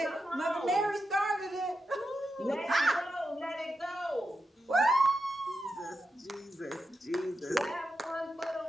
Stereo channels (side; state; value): both; normal; correlation 0.88